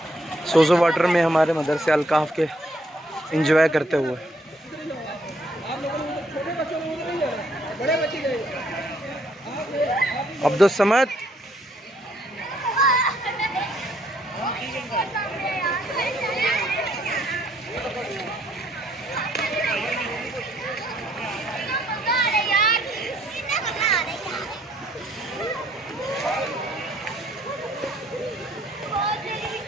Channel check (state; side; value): normal; both; correlation 0.67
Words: सोजो वाटर में हमारे मदरसे अलकाफ के एंजॉय करते हुए। अब्दुल समद